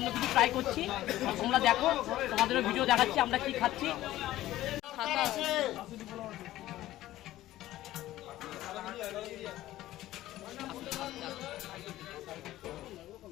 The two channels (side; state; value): right; quieter; 15.0 dB